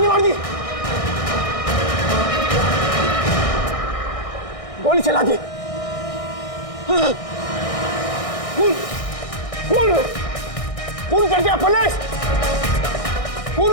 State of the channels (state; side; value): late; right; 1.6 ms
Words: मार दी, गोली चला दी। खून कर दिया पुलिस, खून